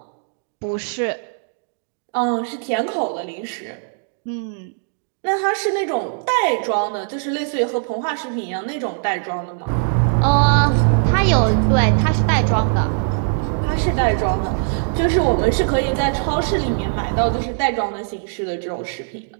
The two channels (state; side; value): silent; left; digital silence